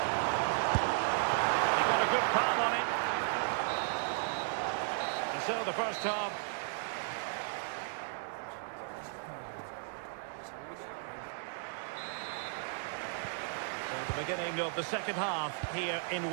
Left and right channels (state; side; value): silent; left; digital silence